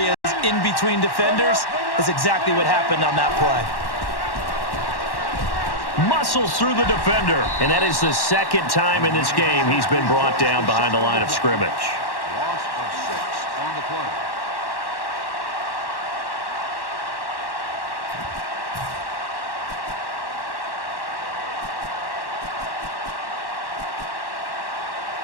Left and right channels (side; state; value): right; late; 1.1 ms